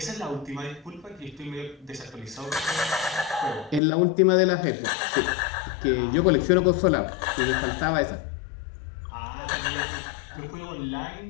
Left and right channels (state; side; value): drops out; right; at 3.8 s